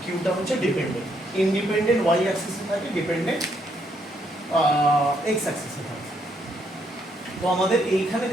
কিউটা হচ্ছে ডিপেন্ডেন্ট। ইন্ডিপেন্ডেন্ট ওয়াই অ্যাক্সিসে থাকে, ডিপেন্ডেন্ট এক্স অ্যাক্সিসে থাকে। তো আমাদের এইখানে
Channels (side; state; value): both; normal; correlation 0.73